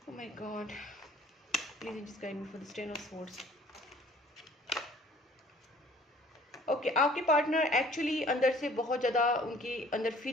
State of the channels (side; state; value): both; normal; correlation 0.54